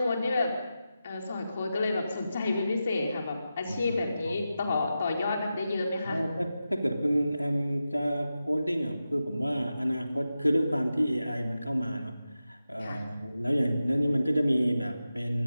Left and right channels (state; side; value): inverted; both; correlation -0.91